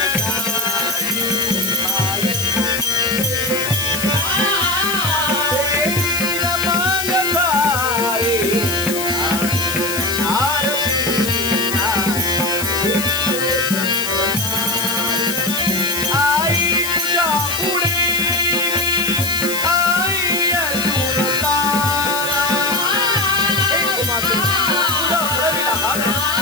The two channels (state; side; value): noise; left; hiss, 5 dB below the sound